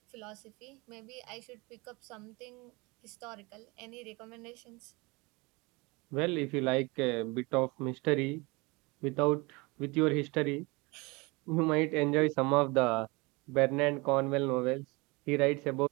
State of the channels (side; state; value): left; quieter; 25.9 dB